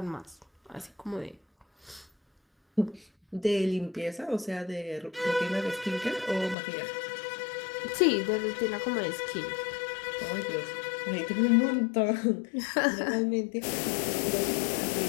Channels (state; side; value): drops out; right; at 6.6 s